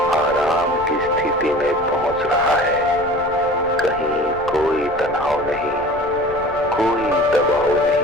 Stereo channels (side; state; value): left; noise; rumble, 18 dB below the sound